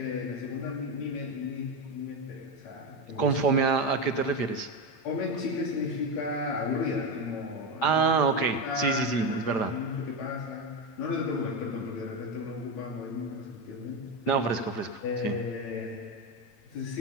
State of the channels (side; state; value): right; late; 8.8 ms